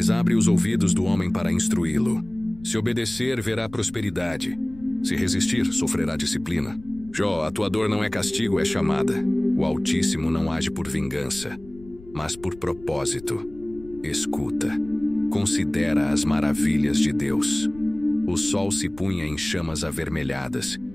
abre os ouvidos do homem para instruí-lo. Se obedecer, verá prosperidade. Se resistir, sofrerá disciplina. Jó, a tua dor não é castigo, é chamada. O Altíssimo não age por vingança, mas por propósito. Escuta. Considera as maravilhas de Deus. O sol se punha em chamas avermelhadas,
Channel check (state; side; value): noise; left; rumble, 20 dB below the sound